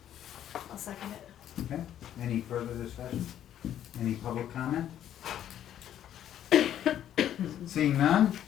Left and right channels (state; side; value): quieter; right; 10.8 dB